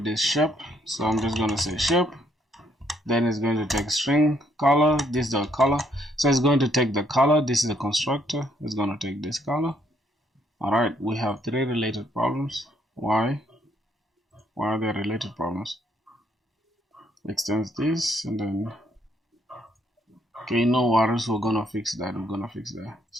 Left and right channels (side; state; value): both; normal; correlation 0.70